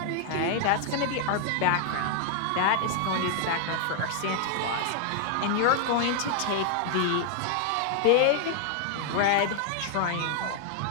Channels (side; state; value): both; different; correlation -0.01